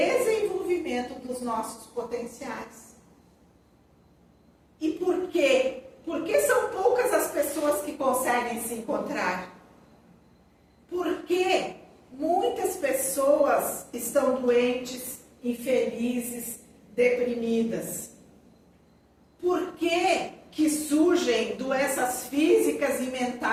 dos nossos potenciais. E por quê? Porque são poucas as pessoas que conseguem se encontrar. Porque muitas pessoas estão doentes, infelizes, deprimidas. Por que surgem doenças físicas e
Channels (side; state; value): both; identical; correlation 1.00